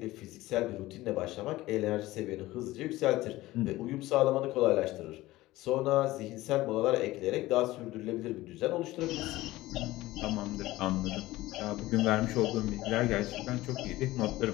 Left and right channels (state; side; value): quieter; right; 17.7 dB